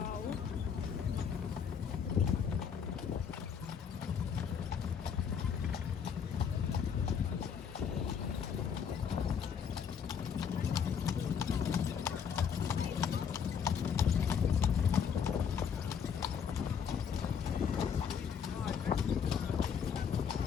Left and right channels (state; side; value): quieter; right; 7.2 dB